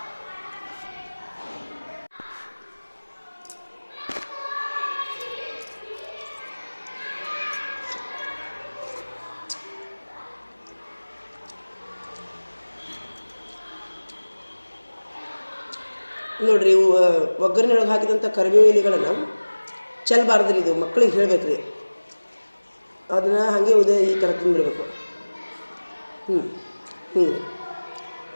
ನೋಡ್ರಿ, ಒಗ್ಗರಣೆಯೊಳಗೆ ಹಾಕಿದಂಥ ಕರಿಬೇವು ಎಲೆಗಳನ್ನು ಚೆಲ್ಲಬಾರ್ದ್ರಿ. ಇದು ಮಕ್ಕಳಿಗೆ ಹೇಳ್ಬೇಕ್ರಿ. ಅದನ್ನು ಹಾಗೆ ಈ ಥರ ತಿಂದ್ಬಿಡ್ಬೇಕು. ಹಿಂಗೆ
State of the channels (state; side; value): inverted; both; correlation -1.00